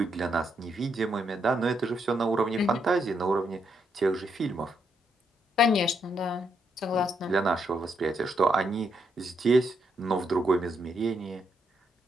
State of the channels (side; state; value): both; normal; correlation 0.78